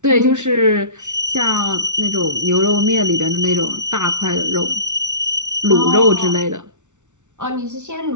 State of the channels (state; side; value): late; left; 0.85 ms